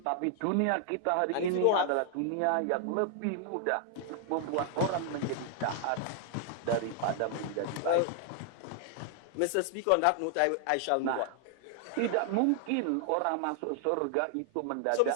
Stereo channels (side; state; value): both; different; correlation 0.00